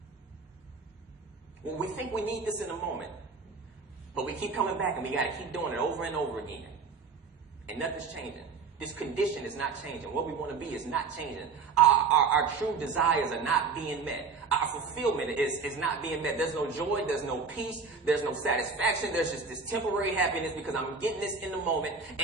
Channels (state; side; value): quieter; left; 4.9 dB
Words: Well, we think we need this in a moment, but we keep coming back and we got to keep doing it over and over again. And nothing's changing. This condition is not changing. What we want to be is not changing. Our true desires are not being met. Our fulfillment is not being met. There's no joy. There's no peace. There's no satisfaction. There's just this temporary happiness because I'm getting this in the moment,